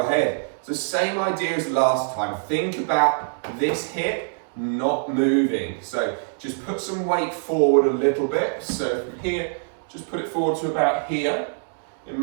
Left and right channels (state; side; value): silent; left; digital silence